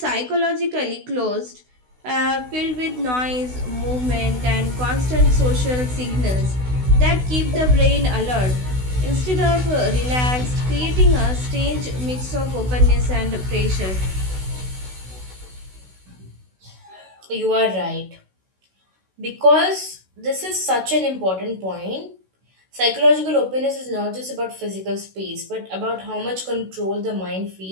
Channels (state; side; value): late; left; 16 ms